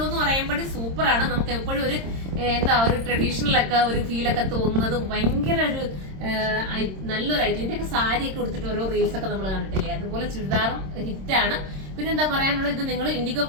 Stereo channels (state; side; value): late; left; 26 ms